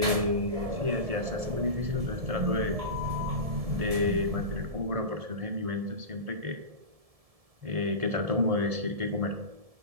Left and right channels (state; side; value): late; left; 1.7 ms